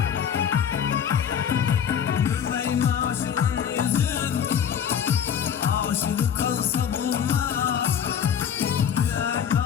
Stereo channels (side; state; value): right; quieter; 8.2 dB